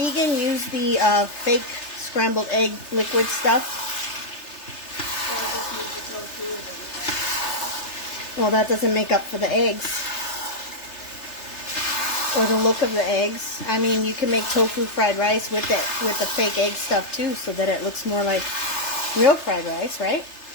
use the fake scrambled egg liquid stuff. Or just use the tofu. Well, that doesn't make up for the eggs. Or the look of the eggs. I mean, you can make tofu fried rice with the fake egg stuff too, so that it looks more like real fried rice, right?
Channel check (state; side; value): late; right; 3.3 ms